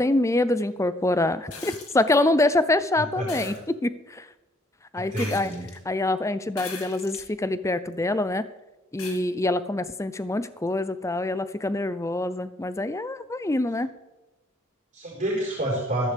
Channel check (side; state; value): both; normal; correlation 0.67